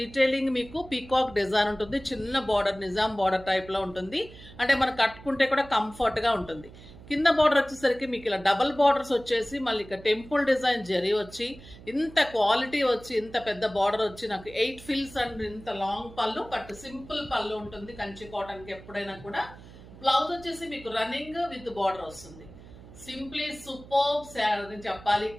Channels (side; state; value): right; noise; hum, 18 dB below the sound